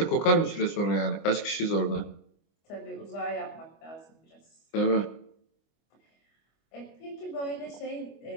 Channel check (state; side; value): late; right; 25 ms